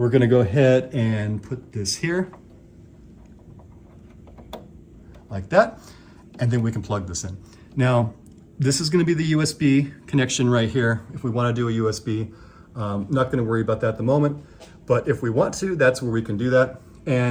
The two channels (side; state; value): both; identical; correlation 1.00